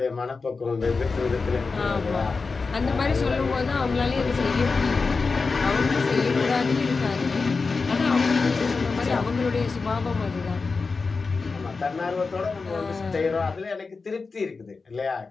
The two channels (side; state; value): right; quieter; 4.4 dB